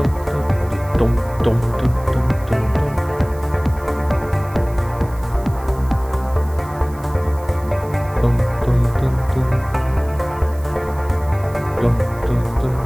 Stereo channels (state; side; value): noise; right; hiss, 23 dB below the sound